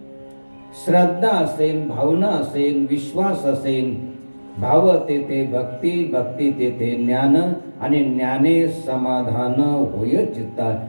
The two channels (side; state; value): both; inverted; correlation -1.00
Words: श्रद्धा असेल, भावना असेल, विश्वास असेल, भाव तेथे भक्ती, भक्ती तेथे ज्ञान, आणि ज्ञाने समाधान होय चित्ता.